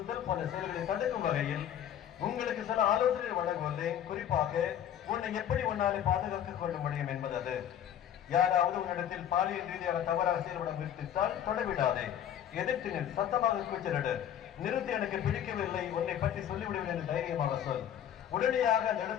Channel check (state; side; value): quieter; right; 10.1 dB